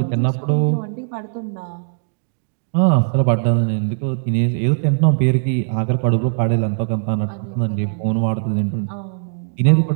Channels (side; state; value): left; silent; digital silence